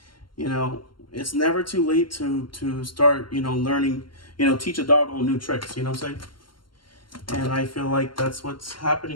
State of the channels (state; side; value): late; right; 0.72 ms